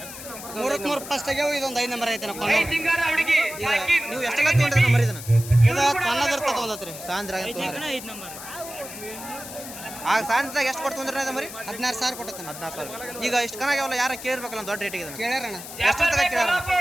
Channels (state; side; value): noise; left; hiss, 12 dB below the sound